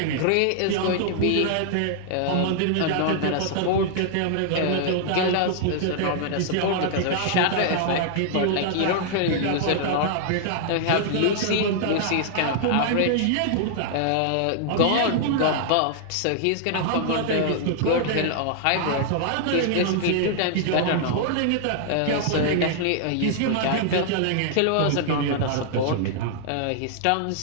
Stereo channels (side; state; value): both; different; correlation -0.01